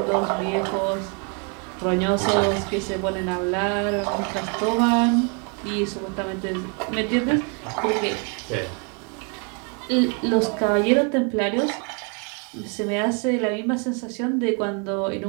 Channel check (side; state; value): left; quieter; 36.6 dB